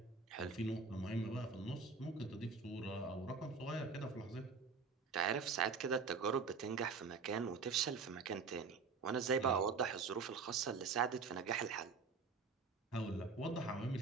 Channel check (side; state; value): left; quieter; 4.9 dB